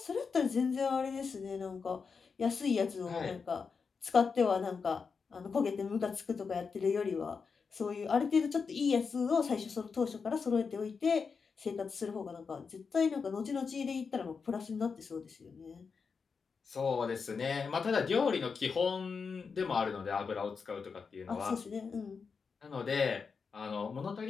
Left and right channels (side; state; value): right; quieter; 5.4 dB